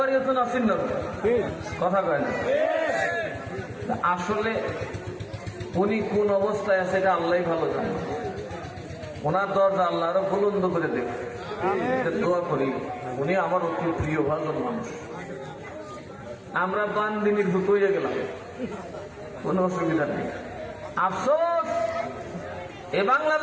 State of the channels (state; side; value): identical; both; correlation 1.00